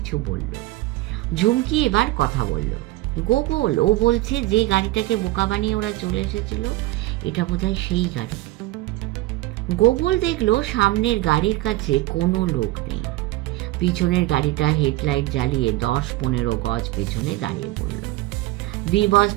বলল। ঝুমকি এবার কথা বলল। গোগল, ও বলছে যে গাড়িটাকে বোকা বানিয়ে ওরা চলে এসেছিল, এটা বোধহয় সেই গাড়ি। গোগল দেখলো সামনের গাড়ির কাছে কোনো লোক নেই। পিছনের গাড়িটা হেডলাইট জ্বালিয়ে 10-15 গজ পেছনে দাঁড়িয়ে পড়ল। বি বস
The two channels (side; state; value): left; quieter; 18.3 dB